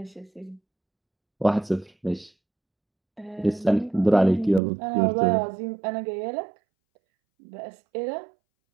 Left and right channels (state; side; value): drops out; left; at 4.6 s